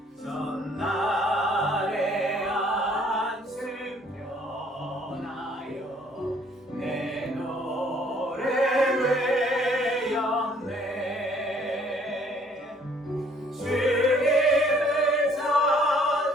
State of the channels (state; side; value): normal; both; correlation 0.61